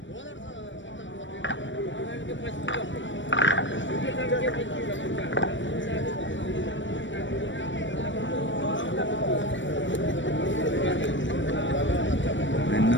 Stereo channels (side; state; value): right; late; 0.55 ms